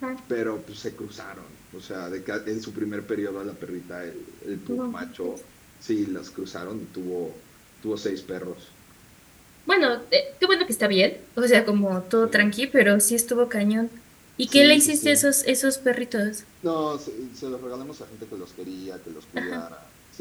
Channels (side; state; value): both; identical; correlation 1.00